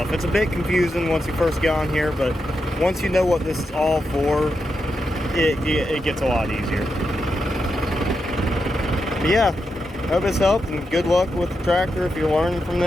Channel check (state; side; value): normal; both; correlation 0.86